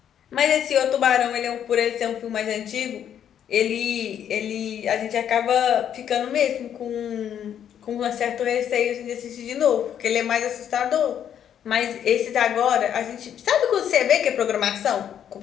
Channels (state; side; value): quieter; right; 9.4 dB